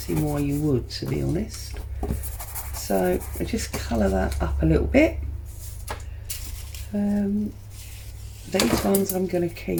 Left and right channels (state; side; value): identical; both; correlation 1.00